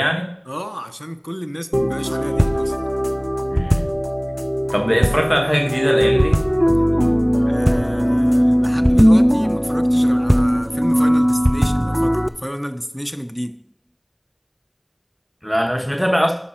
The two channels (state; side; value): identical; both; correlation 1.00